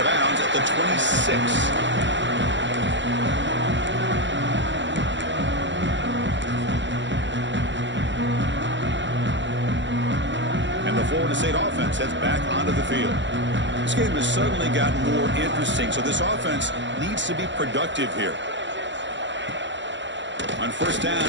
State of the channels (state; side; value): late; left; 0.54 ms